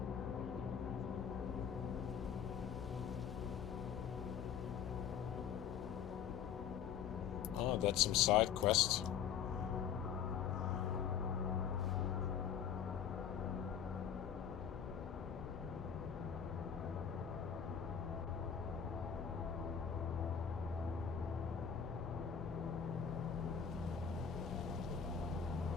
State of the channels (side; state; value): right; quieter; 8.0 dB